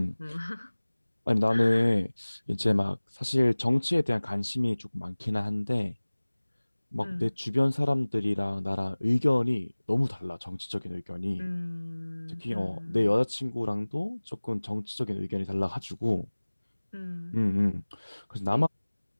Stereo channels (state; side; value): inverted; both; correlation -1.00